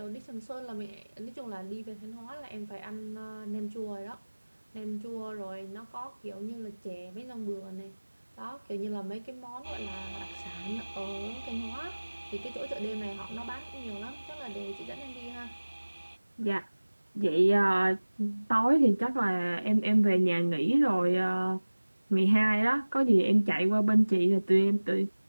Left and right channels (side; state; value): both; inverted; correlation -1.00